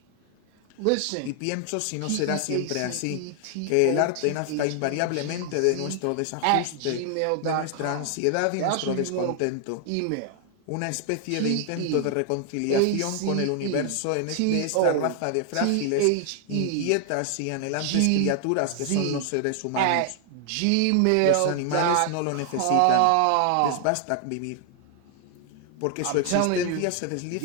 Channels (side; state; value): both; different; correlation 0.00